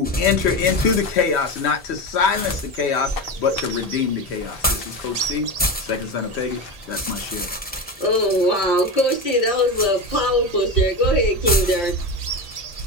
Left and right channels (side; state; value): both; normal; correlation 0.21